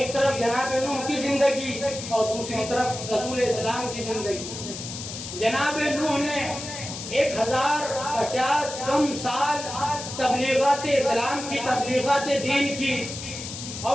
طرف جناب نوح کی زندگی اور دوسری طرف رسول اسلام کی زندگی۔ جناب نوح نے 1050 کم سال تبلیغات اسلام کی، تبلیغات دین کی،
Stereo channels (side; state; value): left; noise; hiss, 9 dB below the sound